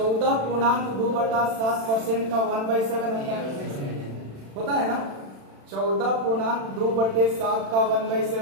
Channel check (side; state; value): left; late; 36 ms